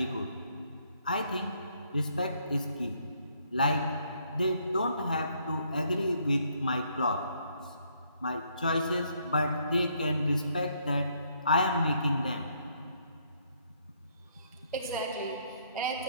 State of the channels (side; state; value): both; inverted; correlation -0.70